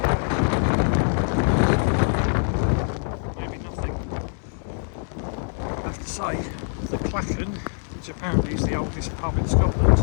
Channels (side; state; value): right; silent; digital silence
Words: Say, the Killin, which apparently is the oldest pub in Scotland,